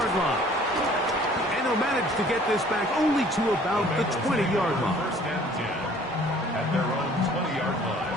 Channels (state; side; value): normal; both; correlation 0.54